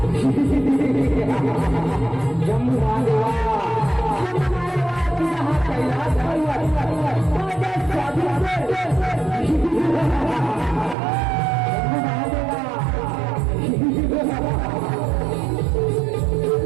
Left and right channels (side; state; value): left; drops out; at 11.0 s